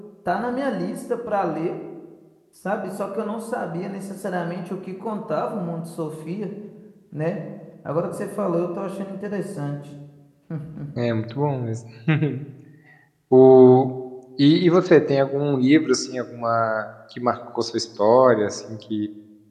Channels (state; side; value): identical; both; correlation 1.00